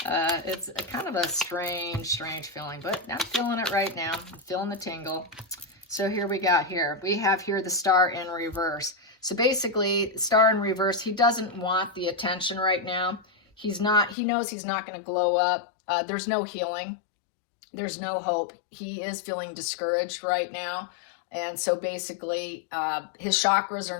It's a kind of a strange feeling, but I'm feeling it right now. I'm feeling the tingle. So here we have here the star in reverse. So basically, star in reverse, he doesn't want the attention right now. He knows he's not going to glow up. There's no healing. There's no hope. He is feeling discouraged right now. And so basically, his chakras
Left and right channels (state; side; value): drops out; right; at 14.2 s